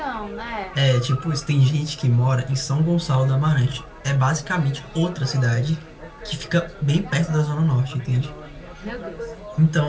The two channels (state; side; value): identical; both; correlation 1.00